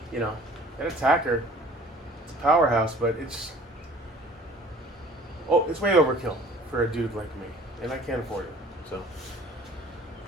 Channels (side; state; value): both; normal; correlation 0.49